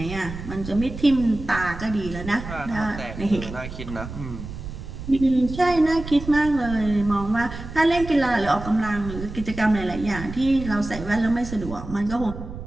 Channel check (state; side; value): noise; right; rumble, 10 dB below the sound